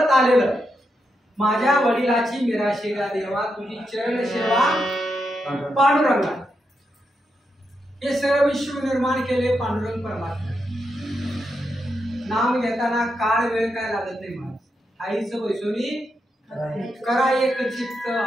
आलेलं माझ्या वडिलाची मिराशेला देवा तुझी चरण सेवा पांडुरंगा हे सर्व विश्व निर्माण केले पांडुरंग परमात्मा नाम घेताना काळ वेळ काय लागत नाही मला आईचं वैसोनी करा एक चित्त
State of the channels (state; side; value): normal; both; correlation 0.84